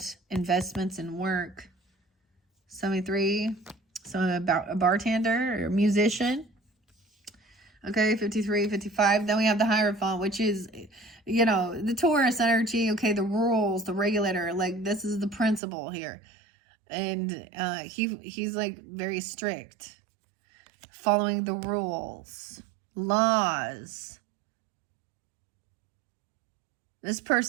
investments and work. 73. So about a bartender or a musician. Okay, 53, 55. Then we have the Hierophant, which is, you know, the Taurus energy. Okay, the rules, the regulator. Like, this is the principle here. And he's like very strict. Following the rules. Laws. This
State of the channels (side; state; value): left; drops out; at 15.6 s